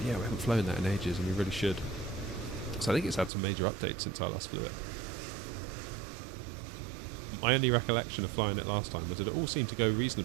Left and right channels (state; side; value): drops out; left; at 3.3 s